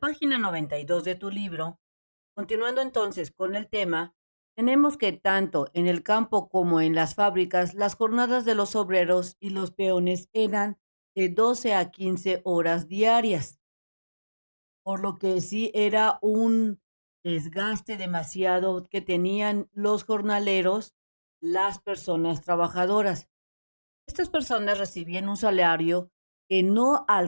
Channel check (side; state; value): both; inverted; correlation -1.00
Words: 92 de tu libro, continuando entonces con el tema, tenemos que tanto en el campo como en las fábricas, las jornadas de los obreros y los peones eran de 12 a 15 horas diarias, por lo que sí era un desgaste demasiado que tenían los jornaleros, las personas trabajadoras. Estas personas recibían un salario que no